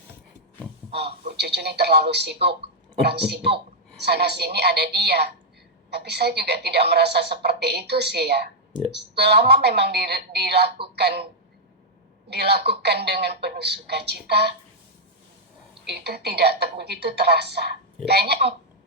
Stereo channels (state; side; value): normal; both; correlation -0.04